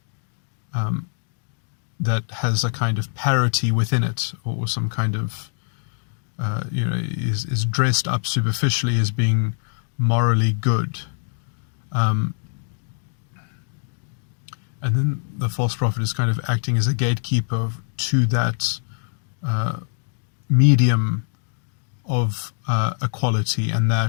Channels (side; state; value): right; silent; digital silence